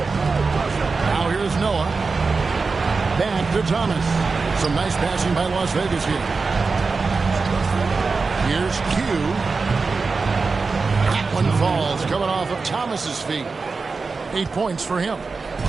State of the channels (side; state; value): left; quieter; 4.3 dB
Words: Now here's Noah. Back to Thomas. Some nice passing by Las Vegas here. Here's Q. That one falls, coming off of Thomas's feet. 8 points for him.